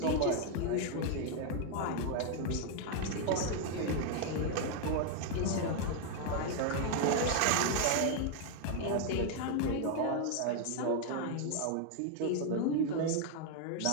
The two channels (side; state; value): both; different; correlation 0.00